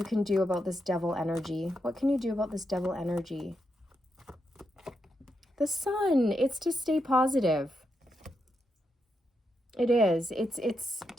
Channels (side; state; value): both; normal; correlation 0.84